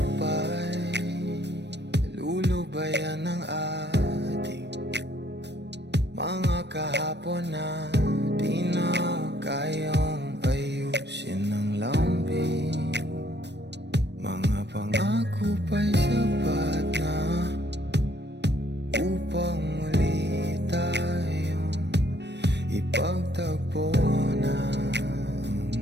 ba'y lulubayan ng ating mga kahapon na di na kayang ayusin ng lambing. Mga pangako pa'y sapat na upang muli tayong ipagtagpo na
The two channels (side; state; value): left; late; 0.50 ms